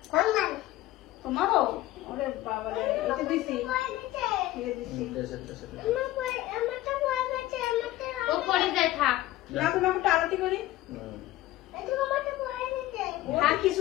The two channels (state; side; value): quieter; right; 16.0 dB